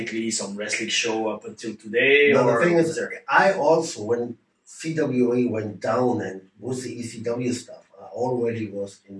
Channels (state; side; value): identical; both; correlation 1.00